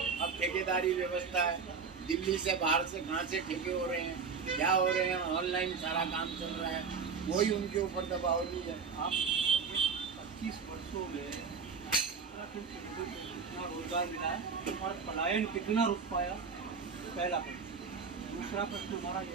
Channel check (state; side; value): quieter; left; 5.5 dB